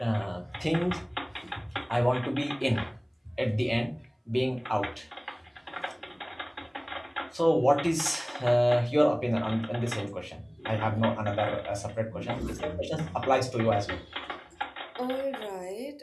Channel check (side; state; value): both; identical; correlation 1.00